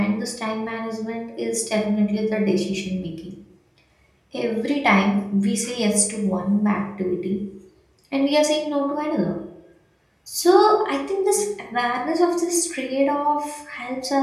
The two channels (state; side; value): identical; both; correlation 1.00